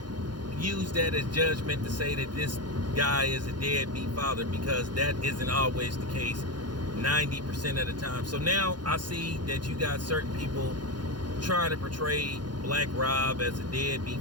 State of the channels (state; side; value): late; left; 0.71 ms